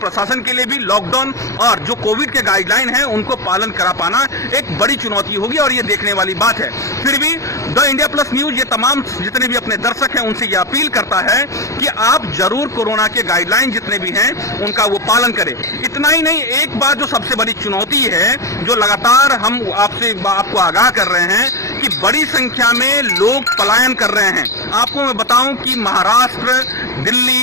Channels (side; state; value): right; late; 0.15 ms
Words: के लिए भी लॉकडाउन और जो कोविड के गाइडलाइन है उनको पालन करा पाना एक बड़ी चुनौती होगी और ये देखने वाली बात है। फिर भी द इंडिया प्लस न्यूज ये तमाम जितने भी अपने दर्शक हैं उनसे ये अपील करता है कि आप जरूर कोरोना के गाइडलाइन जितने भी हैं उनका वो पालन करें। इतना ही नहीं, एक बात जो सबसे बड़ी चुनौती है, जो लगातार हम आपको आगाह कर रहे हैं कि बड़ी संख्या में लोग पलायन कर रहे हैं। आपको मैं बताऊं कि महाराष्ट्र,